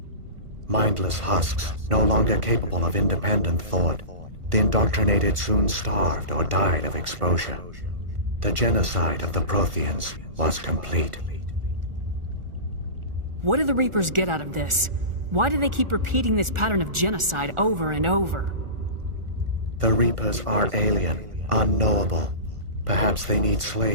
Mindless husks, no longer capable of independent thought, the indoctrinated soon starved or died of exposure. The genocide of the Protheans was complete. What do the Reapers get out of this? Why do they keep repeating this pattern of genocide over and over? The Reapers are alien, unknowable. Perhaps they need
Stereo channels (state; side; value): late; left; 1.4 ms